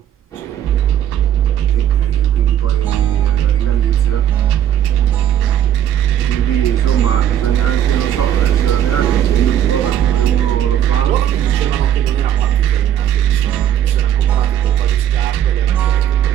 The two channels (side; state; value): left; quieter; 10.6 dB